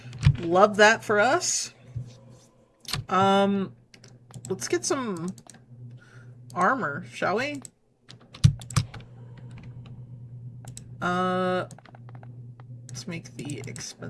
Love that for us. Let's get some armor, shall we? Let's make the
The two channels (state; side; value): identical; both; correlation 1.00